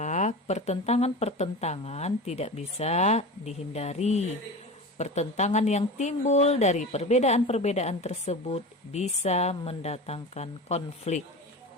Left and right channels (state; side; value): normal; both; correlation 0.30